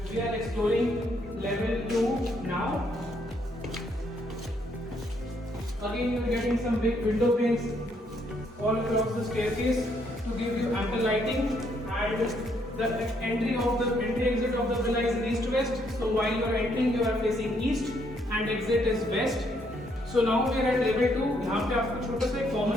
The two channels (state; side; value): normal; both; correlation 0.71